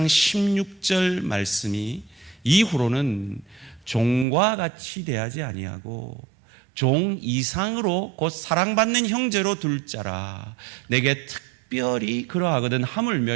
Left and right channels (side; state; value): left; drops out; at 4.2 s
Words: 16절 말씀이 이후로는 종과 같이 대하지 아니하고 종 이상으로 곧 사랑받는 형제로 둘 자라. 내게 특별히 그러하거든